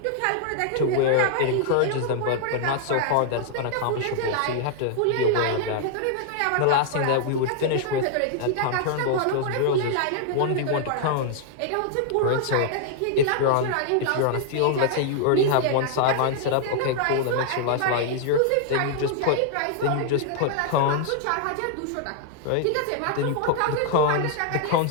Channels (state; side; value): different; both; correlation 0.00